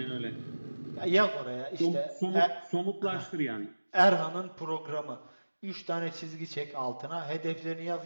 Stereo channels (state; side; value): inverted; both; correlation -1.00